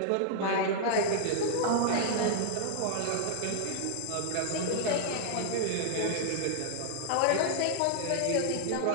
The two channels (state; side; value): different; both; correlation -0.01